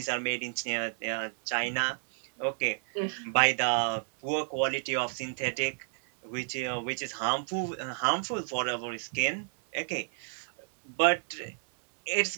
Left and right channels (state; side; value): silent; left; 57 dB below the other